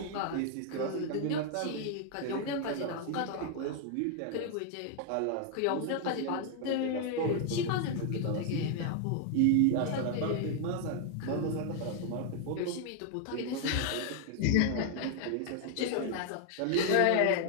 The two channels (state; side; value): different; both; correlation 0.00